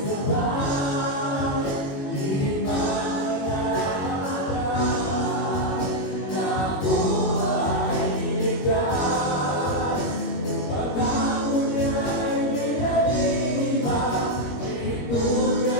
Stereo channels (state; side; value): late; right; 21 ms